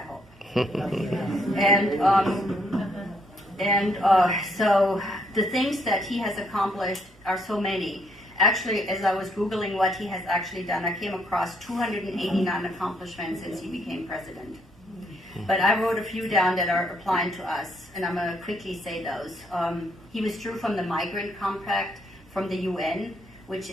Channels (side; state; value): both; normal; correlation 0.71